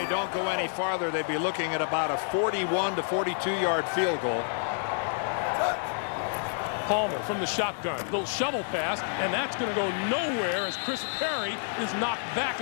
don't go any farther, they'd be looking at about a 41 to 42-yard field goal. Palmer from the shotgun. Little shovel pass, and that's going to go nowhere as Chris Perry is knocked back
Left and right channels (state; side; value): silent; right; digital silence